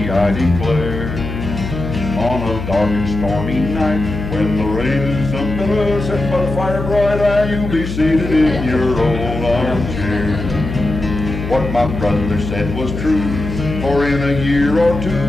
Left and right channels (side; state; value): left; noise; hum, 6 dB below the sound